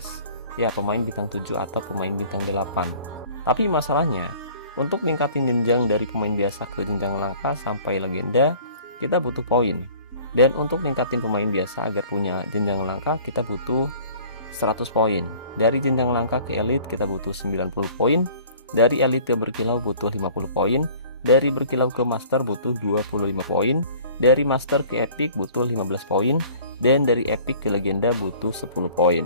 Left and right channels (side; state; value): both; inverted; correlation -0.49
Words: Ya, pemain bintang 7 atau pemain bintang 8. Tapi masalahnya, untuk ningkatin jenjang dari pemain biasa ke jenjang langka sampai legenda, kita butuh poin. Dan untuk ningkatin pemain biasa agar punya jenjang langka, kita butuh 100 poin. Dari jenjang langka ke elite kita butuh 90 poin. Dari elite ke berkilau butuh 50 poin. Dari berkilau ke master butuh 25 poin, dari master ke epic butuh 15 poin, dan dari epic ke legenda butuh 10 poin.